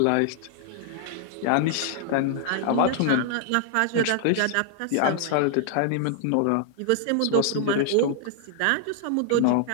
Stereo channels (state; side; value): different; both; correlation -0.01